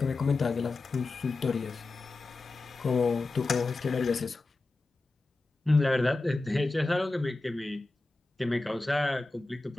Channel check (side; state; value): right; quieter; 3.2 dB